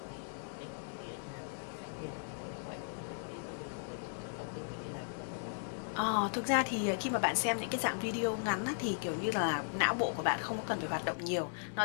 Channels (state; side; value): silent; right; 53 dB below the other